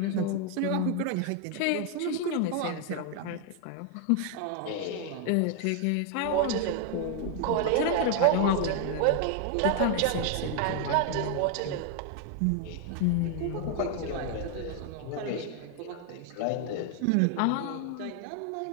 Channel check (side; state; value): both; different; correlation 0.00